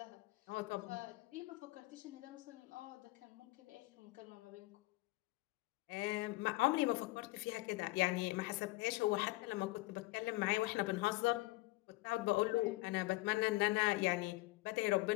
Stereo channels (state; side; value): quieter; right; 21.1 dB